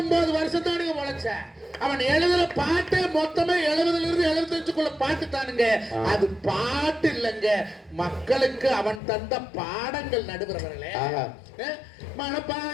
வருஷம் தானுங்க உழைச்ச. அவன் எழுதுற பாட்டு மொத்தமே 70ல இருந்து 75க்குள்ள பாட்டு தானுங்க. அது பாட்டு இல்லைங்க, மக்களுக்கு அவன் தந்த பாடங்கள். நடுவர்களே,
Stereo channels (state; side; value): drops out; right; at 9.0 s